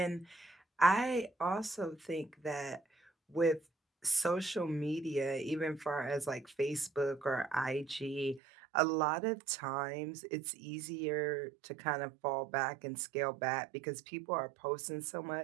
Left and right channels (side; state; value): left; drops out; at 8.4 s